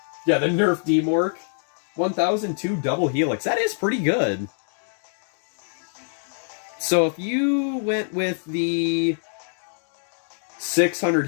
Yeah, the Nerf D-Mork. 1002 double helix. That is pretty good. So if you went with the 600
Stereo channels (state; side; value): silent; right; digital silence